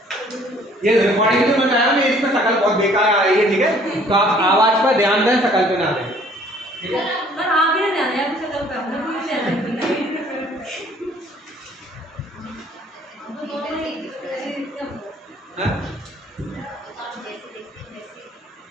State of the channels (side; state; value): both; normal; correlation 0.57